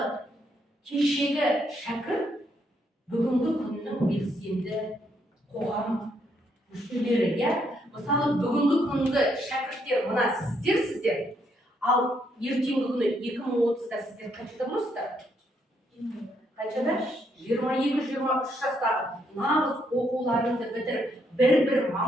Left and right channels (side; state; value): both; normal; correlation 0.74